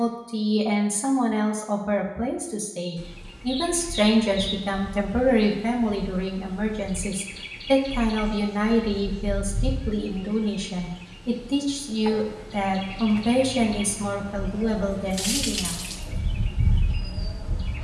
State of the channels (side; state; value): both; identical; correlation 1.00